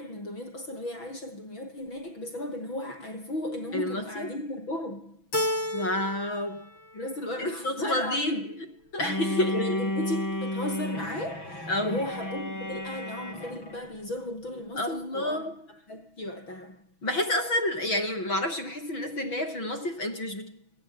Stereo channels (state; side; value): late; right; 6.1 ms